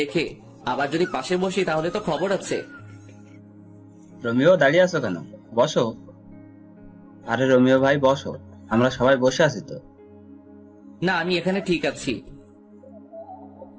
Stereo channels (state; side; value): identical; both; correlation 1.00